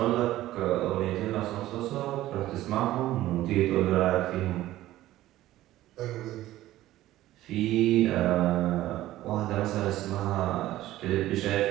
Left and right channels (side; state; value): left; quieter; 15.2 dB